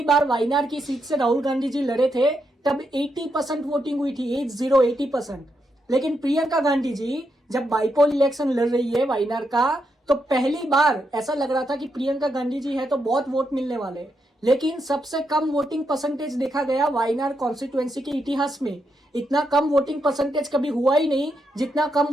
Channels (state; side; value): normal; both; correlation 0.82